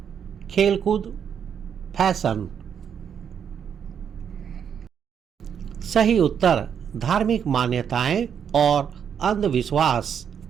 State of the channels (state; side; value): quieter; left; 7.9 dB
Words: खेलकूद, फैशन। सही उत्तर धार्मिक मान्यताएं और अंधविश्वास।